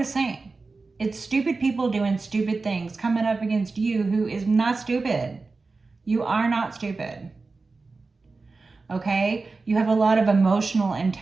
same. It's stupid people doing stupid things coming up against you who is not stupid. You are not stupid. Okay? You have a lot of emotional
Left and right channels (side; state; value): left; quieter; 3.9 dB